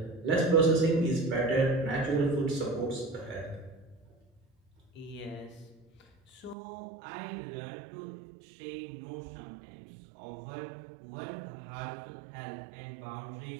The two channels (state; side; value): drops out; left; at 6.6 s